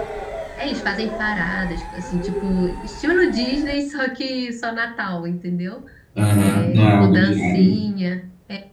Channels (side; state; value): both; identical; correlation 1.00